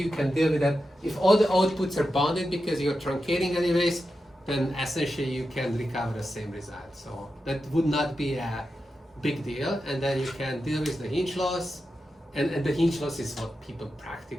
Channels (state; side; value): normal; both; correlation 0.90